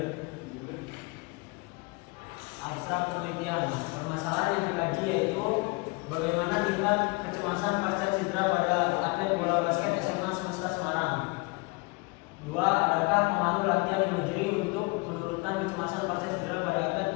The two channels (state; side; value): quieter; right; 27.8 dB